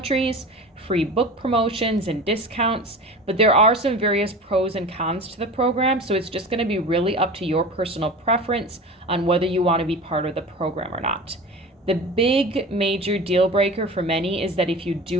free book promotions and discounts, but there are some various pros and cons to the program, so it's just going to be really up to your personal preference on whether you want to be part of the program or not. The big major deal breaker for many is that if you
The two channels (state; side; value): normal; both; correlation 0.34